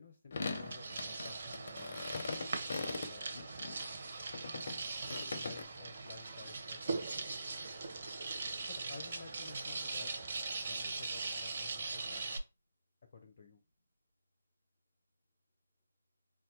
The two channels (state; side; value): inverted; both; correlation -0.83